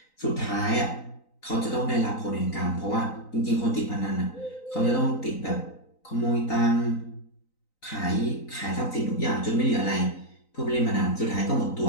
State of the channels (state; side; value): late; right; 3.9 ms